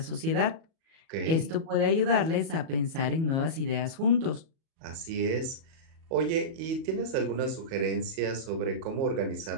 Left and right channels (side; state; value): left; late; 37 ms